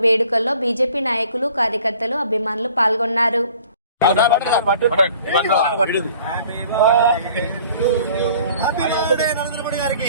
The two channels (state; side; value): inverted; both; correlation -0.52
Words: వేడుకల్లో బీజేపీ నాయకులు, కార్యకర్తలు, అభిమానులు పాల్గొన్నారు.